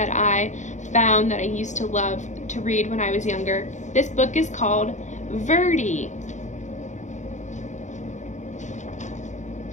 I found that I used to love to read when I was younger. This book is called Verdi.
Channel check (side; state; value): right; late; 0.35 ms